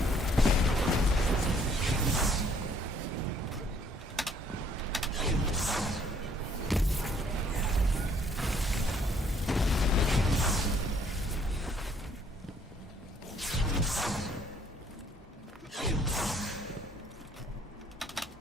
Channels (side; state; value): both; normal; correlation 0.63